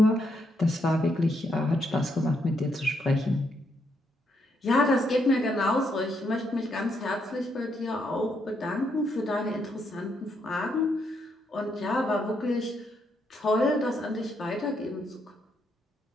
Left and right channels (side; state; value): both; normal; correlation 0.77